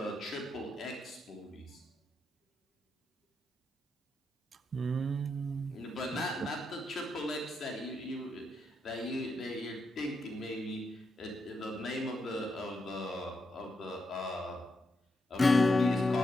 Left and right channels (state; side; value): normal; both; correlation 0.83